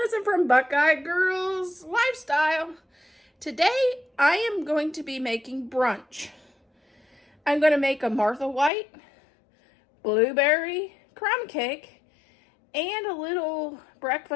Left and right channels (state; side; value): drops out; right; at 8.7 s